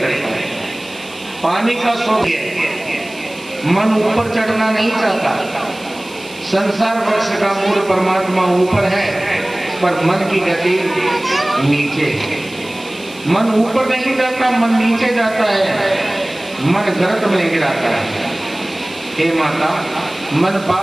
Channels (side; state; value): right; noise; hiss, 20 dB below the sound